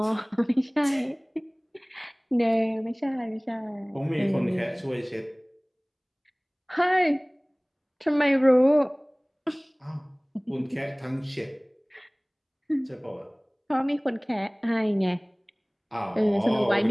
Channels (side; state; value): both; identical; correlation 1.00